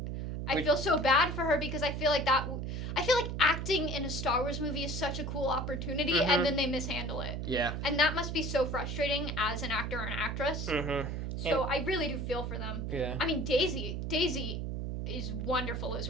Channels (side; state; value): right; noise; hum, 3 dB below the sound